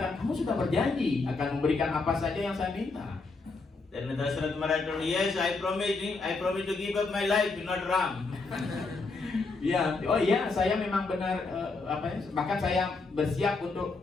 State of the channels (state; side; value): quieter; right; 3.9 dB